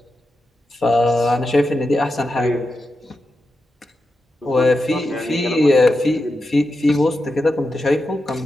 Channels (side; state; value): both; normal; correlation 0.89